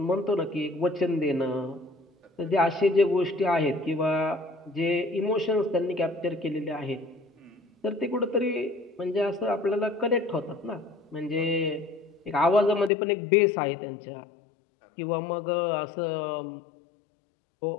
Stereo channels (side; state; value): right; drops out; at 12.9 s